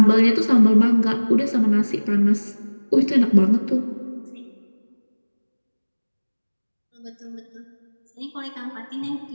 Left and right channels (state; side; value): inverted; both; correlation -1.00